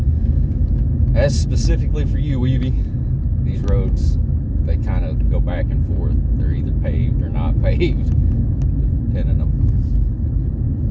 That's specifically for you, Weavy. These roads, they kind of go back and forth. They're either paved or not paved, depending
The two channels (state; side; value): identical; both; correlation 1.00